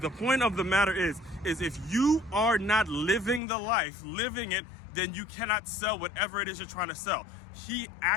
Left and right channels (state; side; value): drops out; right; at 3.4 s